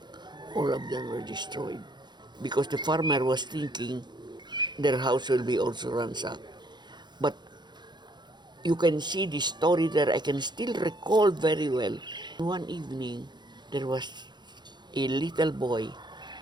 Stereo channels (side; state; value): left; late; 0.21 ms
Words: All of them were destroyed because the farmer was thinking their house will be also ransacked. But you can see the story there. I can still recall very well. One evening, there was a little boy